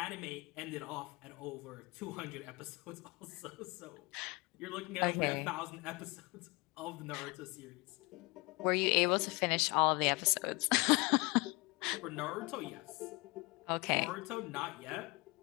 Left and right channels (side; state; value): right; quieter; 26.5 dB